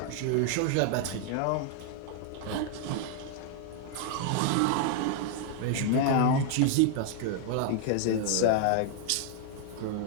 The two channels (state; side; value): different; both; correlation 0.00